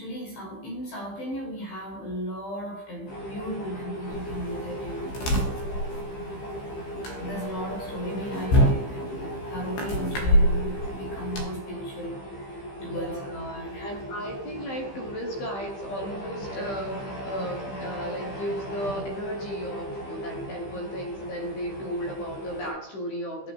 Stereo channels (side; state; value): right; late; 15 ms